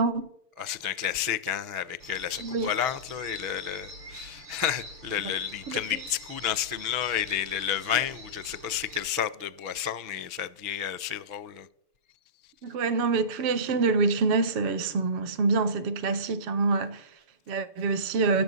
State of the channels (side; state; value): left; late; 6.8 ms